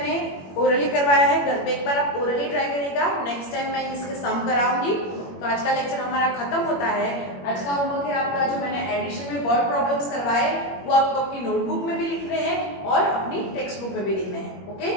ओरली करवाया है. घर पे एक बार आप ओरली ट्राई करिएगा. नेक्स्ट टाइम मैं इसके सम कराऊंगी. तो आज का लेक्चर हमारा खत्म होता है. आज का होमवर्क है आपका जो मैंने एडिशन में वर्ड प्रॉब्लम्स करवाए वो आपको अपनी नोटबुक में भी लिखने हैं और अपनी टेक्स्ट बुक में भी लिखने हैं. Okay,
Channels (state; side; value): late; right; 21 ms